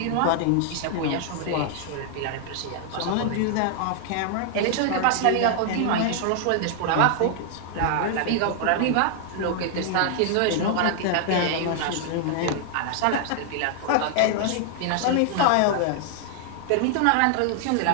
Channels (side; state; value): both; different; correlation 0.00